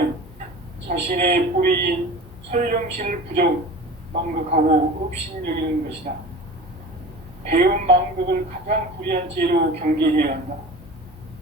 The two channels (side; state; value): both; normal; correlation 0.36